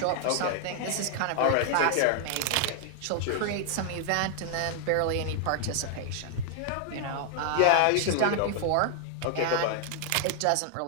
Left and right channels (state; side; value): different; both; correlation 0.00